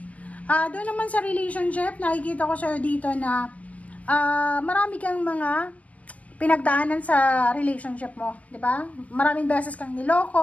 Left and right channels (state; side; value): late; right; 0.069 ms